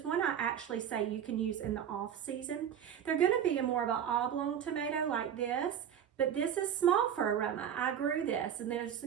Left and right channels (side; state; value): left; quieter; 9.0 dB